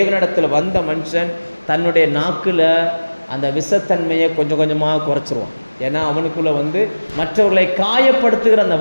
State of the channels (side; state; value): both; inverted; correlation -1.00